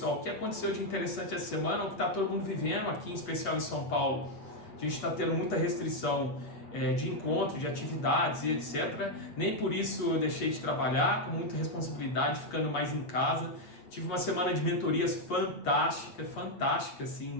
o que aconteceu de interessante essa semana, o que está todo mundo vivendo aqui, em especial em São Paulo. A gente está tendo muita restrição de encontro, de atividades e etc. Nem por isso eu deixei de trabalhar, com muita responsabilidade, ficando mais em casa. Tive uma semana de mentorias fantástica,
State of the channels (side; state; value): right; late; 8.4 ms